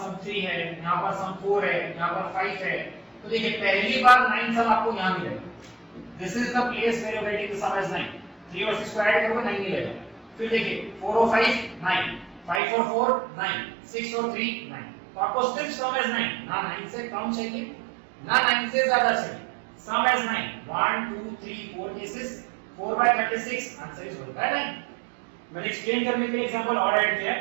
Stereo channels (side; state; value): left; drops out; at 12.6 s